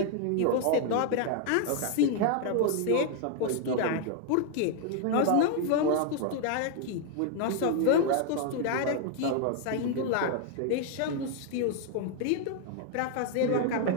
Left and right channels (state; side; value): different; both; correlation 0.00